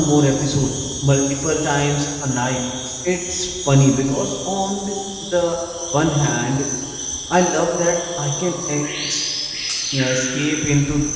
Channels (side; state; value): both; identical; correlation 1.00